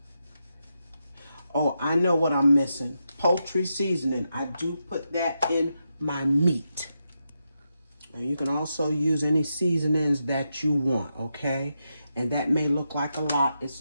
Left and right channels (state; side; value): inverted; both; correlation -0.85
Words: Oh, I know what I'm missing. Poultry seasoning. I do put that in my meat. And you can also use any seasonings that you want, okay? And that may look like a lot. It's